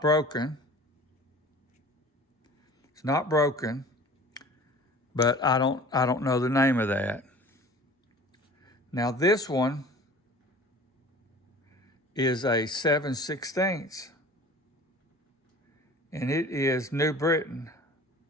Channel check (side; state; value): both; normal; correlation 0.43